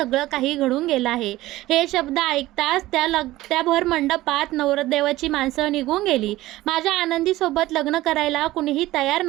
काही घडून गेलं आहे. हे शब्द ऐकताच त्या भर मंडपात नवरदेवाची माणसं निघून गेली. माझ्या आनंदीसोबत लग्न करायला कुणीही तयार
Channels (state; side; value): quieter; left; 16.9 dB